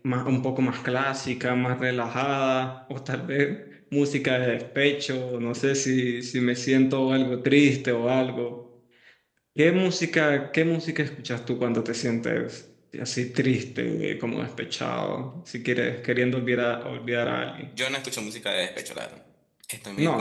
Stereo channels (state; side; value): identical; both; correlation 1.00